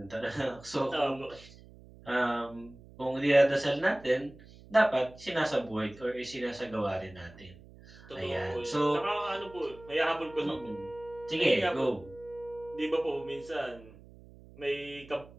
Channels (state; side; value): noise; right; hum, 21 dB below the sound